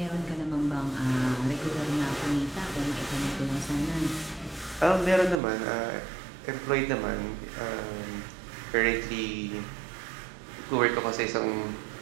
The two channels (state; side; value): drops out; left; at 5.4 s